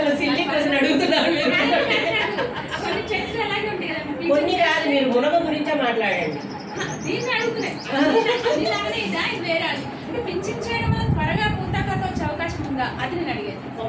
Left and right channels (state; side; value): identical; both; correlation 1.00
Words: సిల్లీ క్వశ్చన్ అడుగుతున్నారు మీరు. కొన్ని చెట్లు అలాగే ఉంటాయి కదా, కొన్ని కాదు, మీరు మునగ గురించే మాట్లాడండి. దీన్ని అడుగుతున్నాయి. ఇలాగనే ఇదా, ఇది వేరే అది. అంటే పింఛన్ చేయడం వల్ల త్వరగా పూతాకత వచ్చే అవకాశం ఉందా, అది నేను అడిగేది.